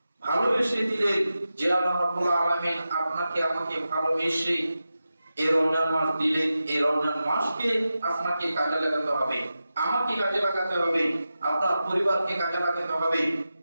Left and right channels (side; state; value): both; inverted; correlation -0.92